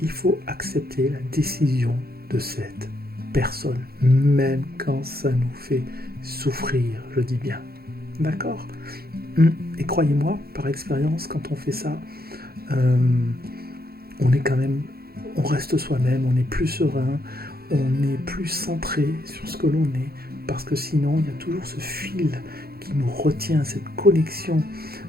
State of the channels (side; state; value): left; late; 0.45 ms